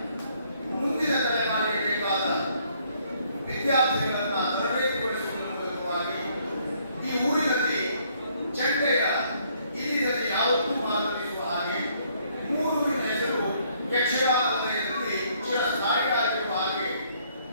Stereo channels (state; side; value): inverted; both; correlation -0.66